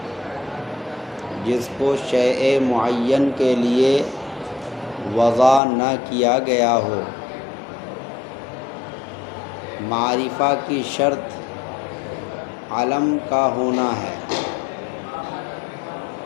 جس کو شیء معین کے لیے وضع نہ کیا گیا ہو۔ معرفہ کی شرط علم کا ہونا ہے۔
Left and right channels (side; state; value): right; drops out; at 5.6 s